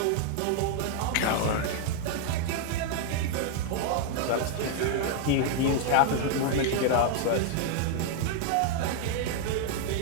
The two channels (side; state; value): both; different; correlation 0.00